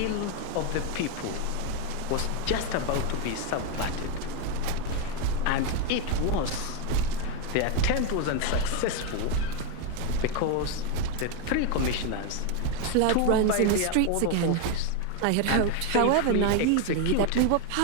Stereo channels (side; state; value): both; different; correlation 0.02